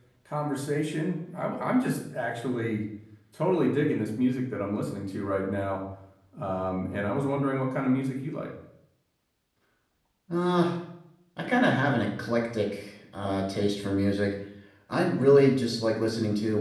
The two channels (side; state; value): both; identical; correlation 1.00